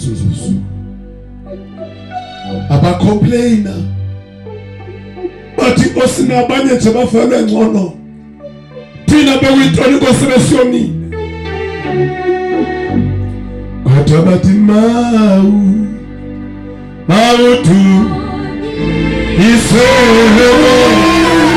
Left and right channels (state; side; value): identical; both; correlation 1.00